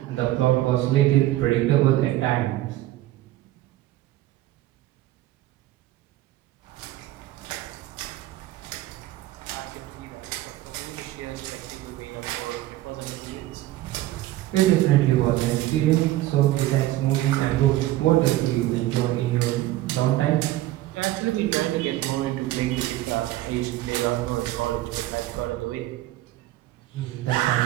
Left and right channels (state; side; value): quieter; left; 15.6 dB